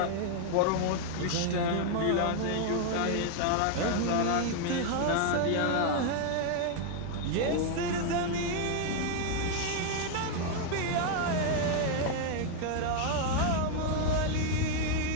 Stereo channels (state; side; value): different; both; correlation 0.00